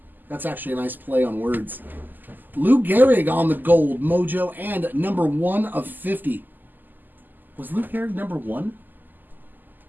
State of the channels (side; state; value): left; late; 0.088 ms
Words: That's actually a nice play on words. Lou Gehrig on the gold mojo and number 1 of 50. Was Lou Gehrig number 1?